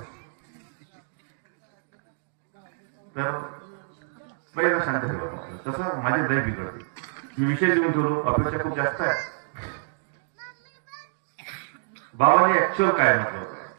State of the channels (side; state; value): left; silent; digital silence